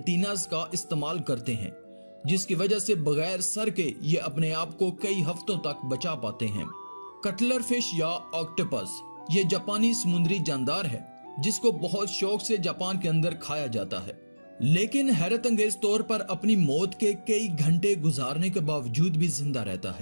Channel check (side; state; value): both; inverted; correlation -1.00